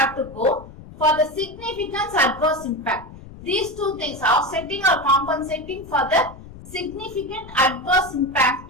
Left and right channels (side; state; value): left; noise; rumble, 17 dB below the sound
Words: to go for the significance adverse impact. These two things, offsetting or compensating for the significant adverse